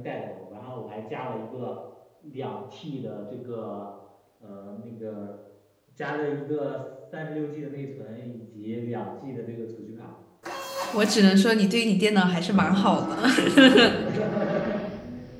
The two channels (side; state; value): both; identical; correlation 1.00